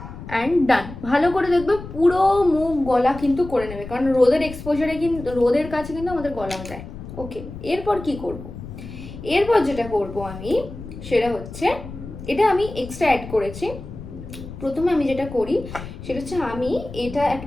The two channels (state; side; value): noise; left; rumble, 12 dB below the sound